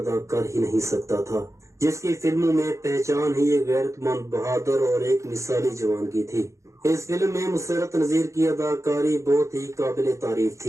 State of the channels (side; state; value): left; late; 0.15 ms